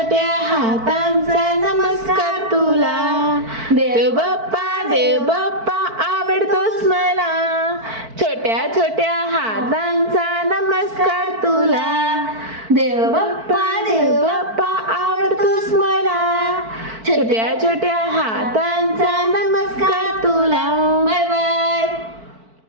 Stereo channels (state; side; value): late; left; 4.5 ms